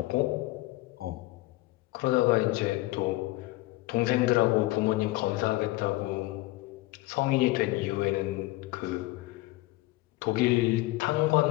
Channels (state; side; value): quieter; right; 19.5 dB